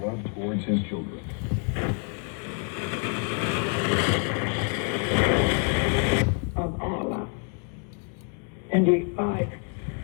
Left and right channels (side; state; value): right; quieter; 39.3 dB